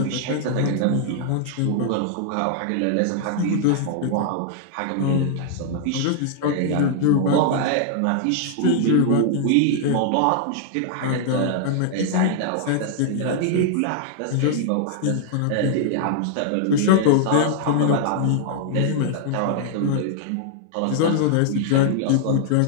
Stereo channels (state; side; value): different; both; correlation -0.01